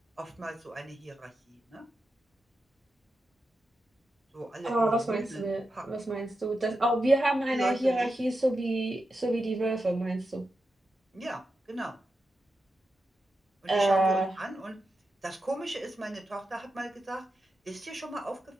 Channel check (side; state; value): both; normal; correlation 0.89